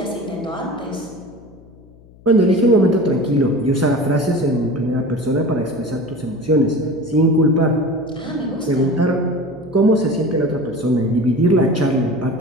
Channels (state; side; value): noise; left; hum, 25 dB below the sound